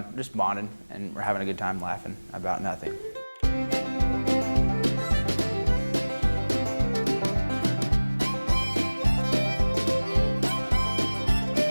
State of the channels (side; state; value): both; inverted; correlation -1.00